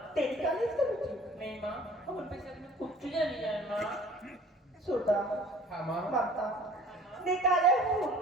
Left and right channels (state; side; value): normal; both; correlation 0.49